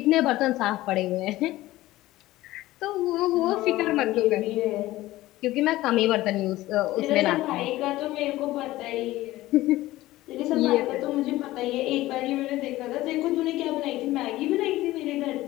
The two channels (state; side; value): quieter; right; 16.9 dB